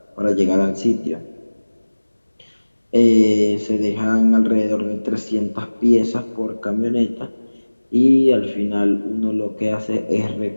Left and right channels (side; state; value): both; inverted; correlation -1.00